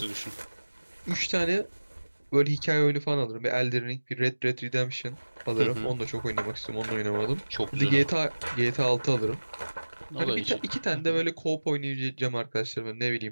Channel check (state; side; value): inverted; both; correlation -1.00